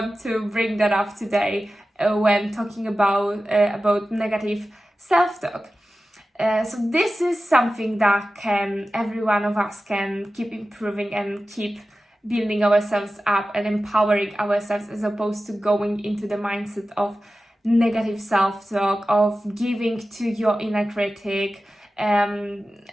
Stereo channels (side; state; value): both; normal; correlation 0.94